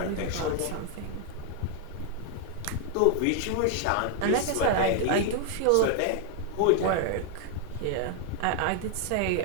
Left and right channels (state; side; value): different; both; correlation 0.00